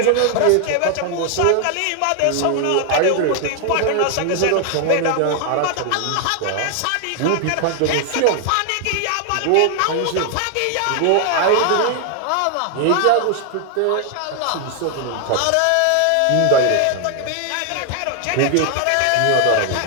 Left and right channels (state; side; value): different; both; correlation 0.00